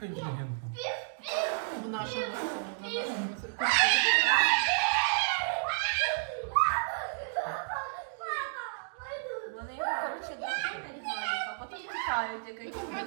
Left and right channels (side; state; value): left; silent; digital silence